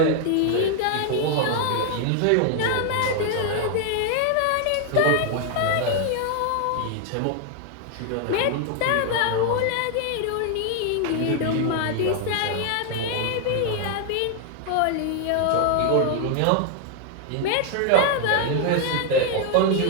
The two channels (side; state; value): both; different; correlation 0.00